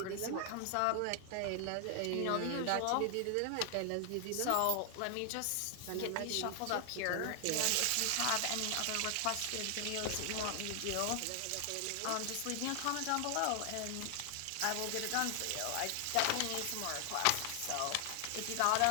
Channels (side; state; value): both; different; correlation 0.00